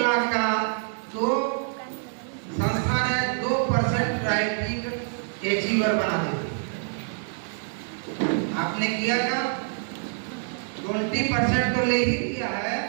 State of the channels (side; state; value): left; silent; 61 dB below the other